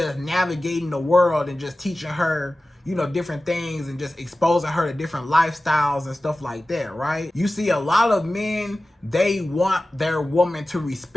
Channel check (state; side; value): normal; both; correlation 0.96